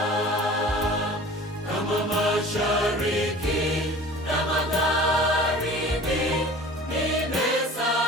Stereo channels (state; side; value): normal; both; correlation 0.43